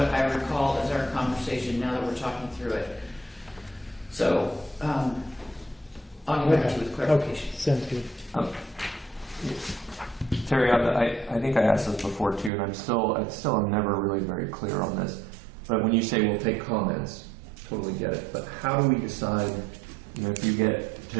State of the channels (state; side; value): drops out; left; at 12.5 s